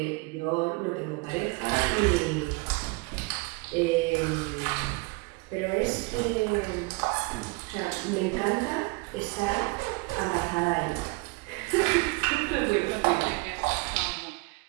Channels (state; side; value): quieter; left; 27.4 dB